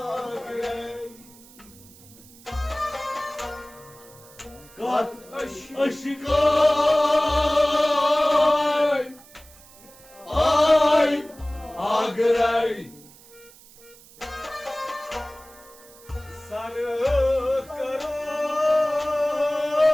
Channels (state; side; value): noise; right; hiss, 23 dB below the sound